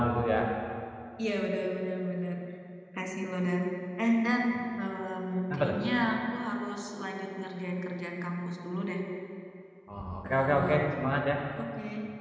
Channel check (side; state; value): both; identical; correlation 1.00